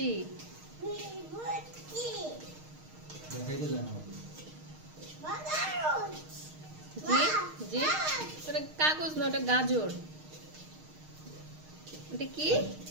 জি জি, ওটা কাগজ না, ওটা গাজর। এটা কি?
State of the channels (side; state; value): left; late; 6.5 ms